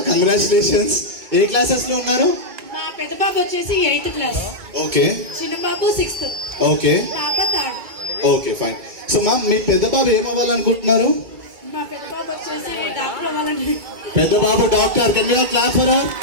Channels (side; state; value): left; late; 2.3 ms